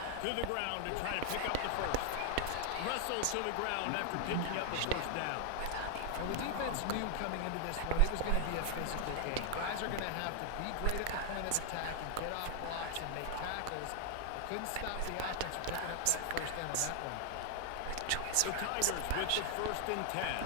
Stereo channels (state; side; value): different; both; correlation 0.00